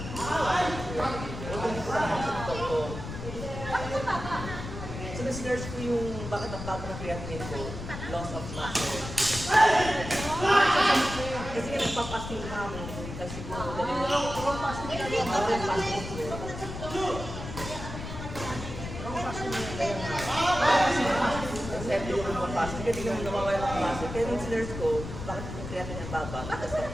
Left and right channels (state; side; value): noise; left; rumble, 8 dB below the sound